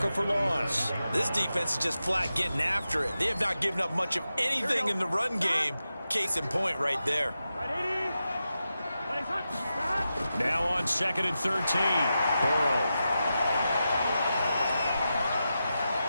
for loss. This defense is just flat getting after it. They have not given up much of anything in the run game. Case in point right there. Now on 2nd and 13, Burrow.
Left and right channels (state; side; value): inverted; both; correlation -0.90